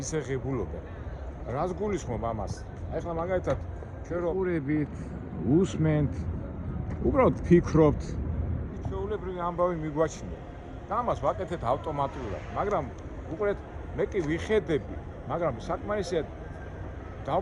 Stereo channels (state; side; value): identical; both; correlation 1.00